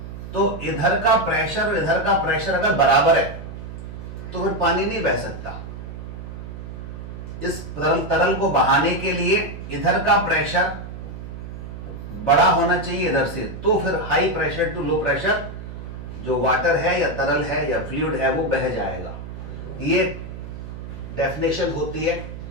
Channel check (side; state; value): right; noise; hum, 10 dB below the sound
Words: तो इधर का प्रेशर और इधर का प्रेशर अगर बराबर है तो फिर पानी नहीं बह सकता। इस तरल को बहाने के लिए इधर का प्रेशर बड़ा होना चाहिए इधर से, तो फिर high pressure to low pressure जो वाटर है या तरल है या फ्लूइड है वो बह जाएगा। ये डेफिनेशन होती है